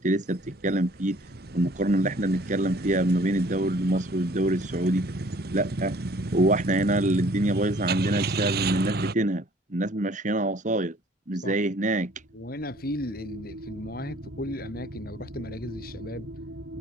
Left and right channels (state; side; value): normal; both; correlation 0.56